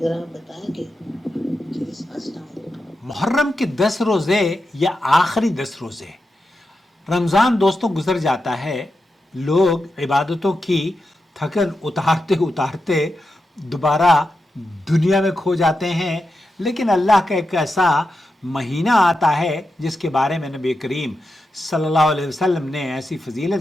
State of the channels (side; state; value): both; normal; correlation 0.89